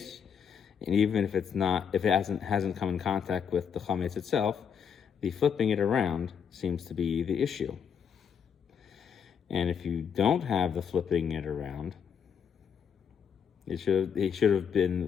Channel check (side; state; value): right; quieter; 7.4 dB